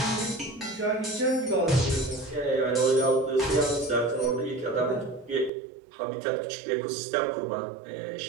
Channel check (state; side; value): drops out; left; at 5.5 s